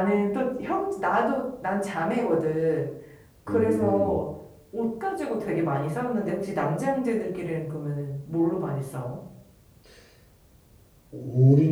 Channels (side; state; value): both; identical; correlation 1.00